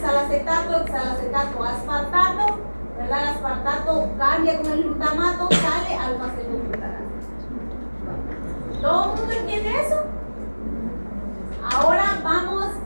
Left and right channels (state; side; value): inverted; both; correlation -1.00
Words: oxalacetato aspartato, ¿verdad? El aspartato cambia con el glutamato, sale alfa-cetoglutarato. ¿Todo el mundo entiende eso? Ahora vamos